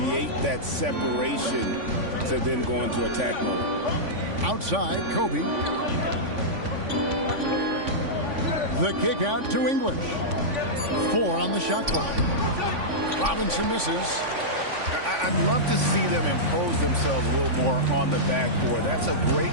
that separation to then go into attack mode. Outside, Kobe. The kick out to English. 4 on the shot clock. Robinson misses. I'd love to see them impose themselves a little more on the backboard. That's a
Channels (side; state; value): left; late; 3.5 ms